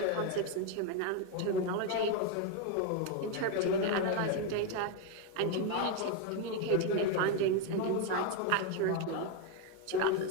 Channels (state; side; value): different; both; correlation 0.02